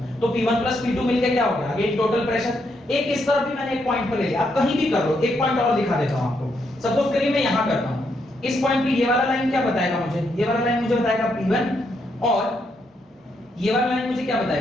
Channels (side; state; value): both; normal; correlation 0.78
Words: तो P1 प्लस P2 मिलके क्या हो गया, अगेन टोटल प्रेशर। एक इस तरफ भी मैंने एक पॉइंट पर ले लिया, आप कहीं भी कर लो, एक पॉइंट और दिखा देता हूं आपको। सपोज करिए मैं यहां करता हूं, इस पॉइंट पे ये वाला लाइन क्या बताएगा मुझे, ये वाला लाइन मुझे बताएगा P1, और ये वाला लाइन मुझे क्या